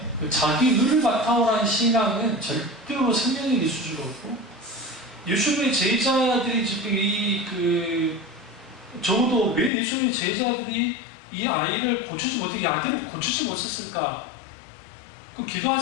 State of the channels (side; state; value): right; drops out; at 9.7 s